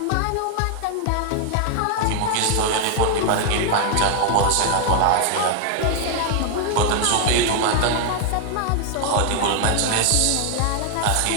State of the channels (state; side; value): different; both; correlation 0.00